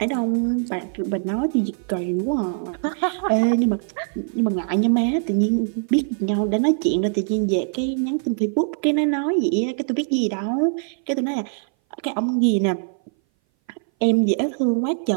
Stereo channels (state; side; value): silent; left; 59 dB below the other